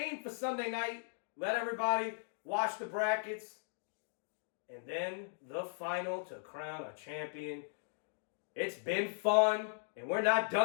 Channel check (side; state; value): right; silent; digital silence